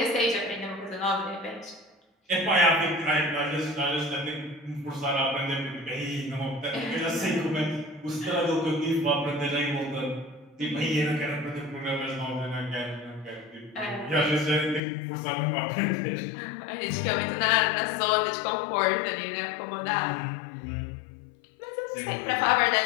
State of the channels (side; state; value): right; drops out; at 14.8 s